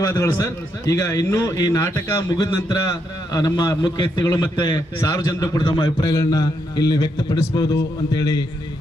ಸರ್. ಈಗ ಇನ್ನೂ ಈ ನಾಟಕ ಮುಗಿದ ನಂತರ ನಮ್ಮ ಮುಖ್ಯ ವ್ಯಕ್ತಿಗಳು ಮತ್ತೆ ಸಾರ್ವಜನಿಕರು ಕೂಡ ತಮ್ಮ ಅಭಿಪ್ರಾಯಗಳನ್ನ ಇಲ್ಲಿ ವ್ಯಕ್ತಪಡಿಸಬಹುದು ಅಂತೇಳಿ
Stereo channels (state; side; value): normal; both; correlation 0.79